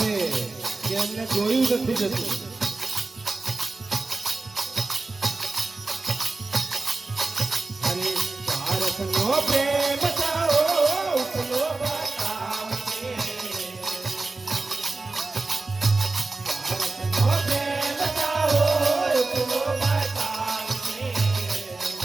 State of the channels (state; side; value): quieter; left; 3.5 dB